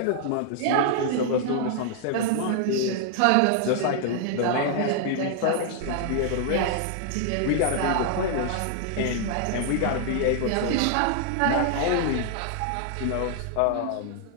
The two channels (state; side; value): different; both; correlation 0.00